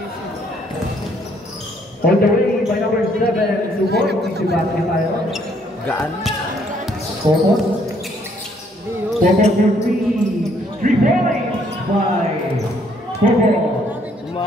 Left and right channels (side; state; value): both; normal; correlation 0.67